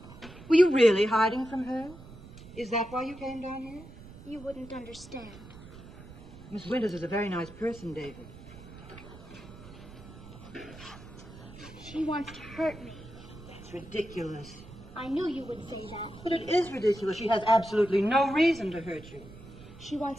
Were you really hiding from her? Is that why you came down here? You wouldn't understand. Miss Winters is a very nice person, David. She wants to hurt me. That's ridiculous. I knew you would say that. But it is ridiculous. She has absolutely no reason to hurt you. She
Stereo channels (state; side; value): noise; right; rumble, 17 dB below the sound